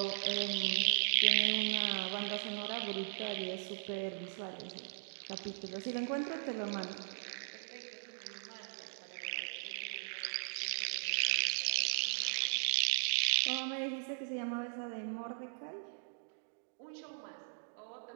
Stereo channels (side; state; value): left; silent; digital silence